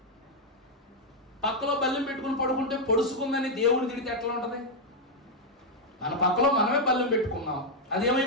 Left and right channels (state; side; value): normal; both; correlation 0.00